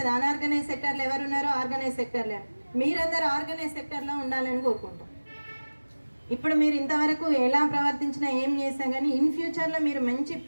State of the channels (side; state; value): both; inverted; correlation -1.00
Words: అన్ఆర్గనైజ్ సెక్టర్లో ఎవరు ఉన్నారో, ఆర్గనైజ్ సెక్టర్లో మీరందరూ ఆర్గనైజ్ సెక్టర్లో ఉండాలని కోరుకుంటాం. ఇప్పుడు మీరు ఇంతవరకు ఎలా ప్రవర్తించినా ఏం చేసినా కానీ ఇన్ ఫ్యూచర్లో మీరు